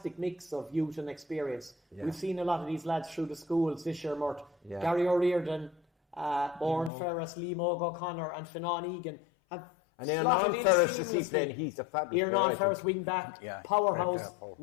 mix of youth and experience. Yeah. We've seen a lot of these lads through the schools this year, Mort. Yeah. Gary O'Riordan, Oren Ferris, Liam O'Connor and Finan Egan have. And Aaron Ferris is he playing? He's a fabulous player. Aaron Ferris wing back, powerhouse.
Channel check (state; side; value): drops out; right; at 6.9 s